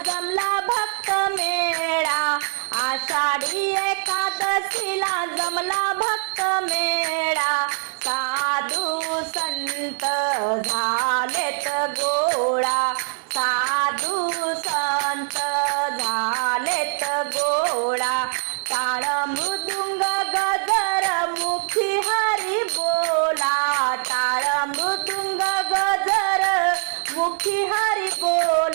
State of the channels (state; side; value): silent; left; 55 dB below the other